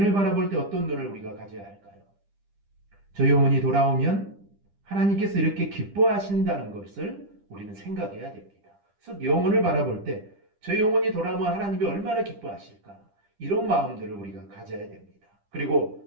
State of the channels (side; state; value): left; late; 10 ms